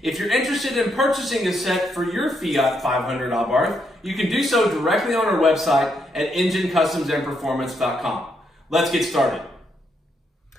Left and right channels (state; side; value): normal; both; correlation 0.77